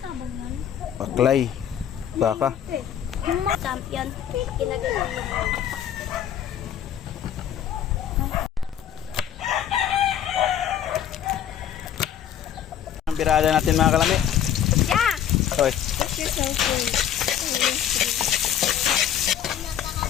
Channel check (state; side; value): quieter; right; 9.8 dB